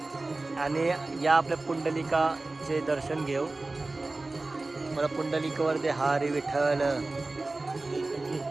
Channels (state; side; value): quieter; left; 3.2 dB